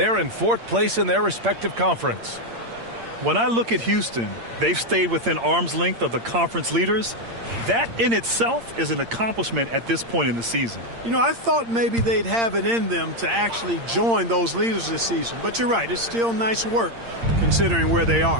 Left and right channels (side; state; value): left; late; 8.7 ms